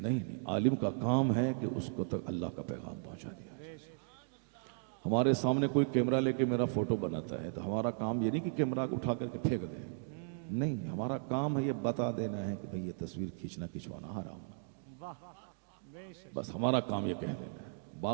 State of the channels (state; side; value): silent; left; digital silence